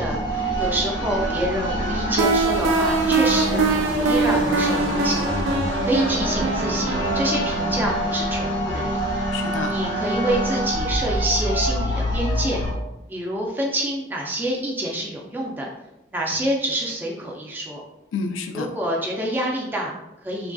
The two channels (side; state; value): both; normal; correlation 0.36